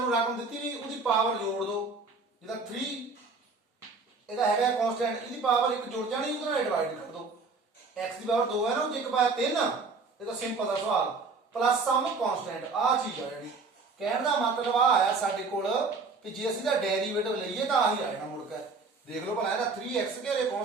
ਰਕਮ ਦਿੱਤੀ ਨਹੀਂ ਉਹਦੀ ਪਾਵਰ ਜੋੜ ਦੋ, ਜਿੱਦਾਂ 3 ਇਹਦਾ ਹੈਗਾ ਕਨਸਟੈਂਟ, ਇਹਦੀ ਪਾਵਰ 1 ਜੁੜ ਜਾਣੀ, ਉਹਦੇ ਨਾਲ ਡਿਵਾਈਡ ਕਰ ਦੋ। x ਦੀ ਪਾਵਰ 2 ਹੈ ਨਾ, ਉਹ 'ਚ 1 ਪਾਇਆ 3, ਇਹ ਤਾਂ ਸਿੰਪਲ ਦਾ ਸਵਾਲ, ਪਲੱਸ ਸਮ ਕਨਸਟੈਂਟ, ਆਹ ਚੀਜ਼ ਆ ਜਿਹੜੀ। ਕਹਿਣ ਦਾ ਮਤਲਬ ਆ ਆਇਆ ਸਾਡੇ ਕੋਲ ਕਿ ਜੇ ਅਸੀਂ ਦਾ ਡੈਰੀਵੇਟਿਵ ਲਈਏ ਤਾਂ ਆਹੀ ਆ ਜਾਣਾ ਮੁੜ ਕੇ। ਦੇਖ ਲਓ ਭਲਾ ਇਹਦਾ 3x ਘੇਰੇ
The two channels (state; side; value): quieter; left; 4.2 dB